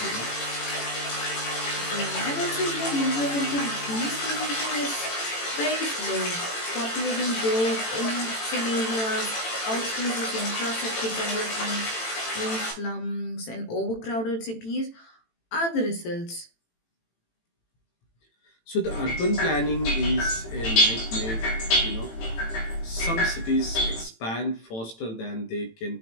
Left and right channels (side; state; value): right; late; 18 ms